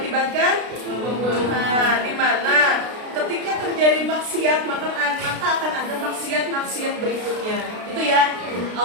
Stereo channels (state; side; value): late; left; 33 ms